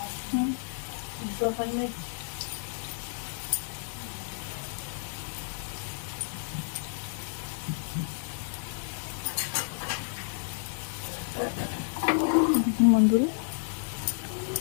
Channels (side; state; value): right; silent; digital silence